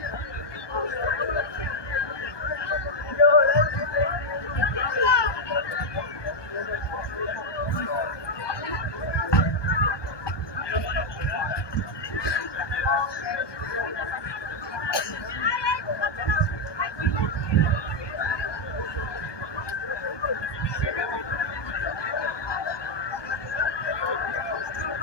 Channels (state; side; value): late; right; 1.2 ms